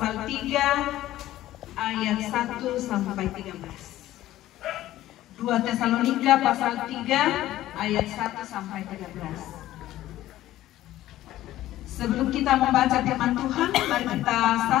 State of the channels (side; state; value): right; quieter; 14.5 dB